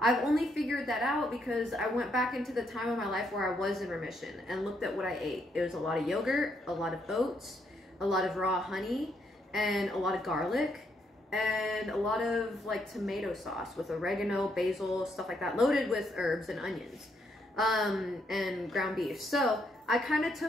only figured that out because I went back into the time of my life where I was in remission and looked at what I ate. It was a lot of yogurt, a lot of oats, a lot of raw honey, and a lot of garlic, and a lot of like tomato sauce with oregano, basil, stuff like that, loaded with herbs and onions, and ground beef. So I kind of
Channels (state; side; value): normal; both; correlation 0.75